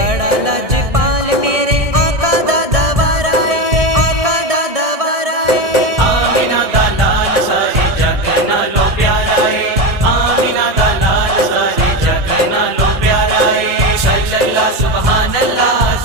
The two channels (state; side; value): late; left; 1.6 ms